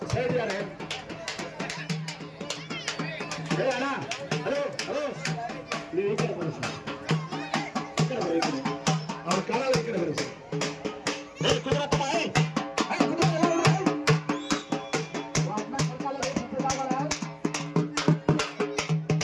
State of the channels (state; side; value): identical; both; correlation 1.00